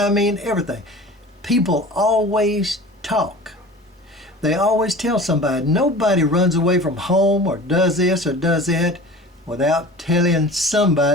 mean everything. People always talk. They always tell somebody. Nobody runs away from home or does this or does that without telling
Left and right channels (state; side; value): normal; both; correlation 0.40